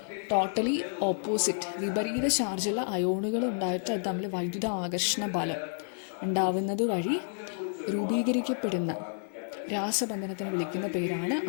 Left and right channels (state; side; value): silent; right; digital silence